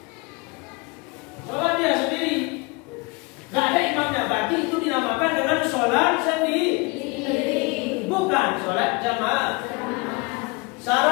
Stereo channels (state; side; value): quieter; right; 27.8 dB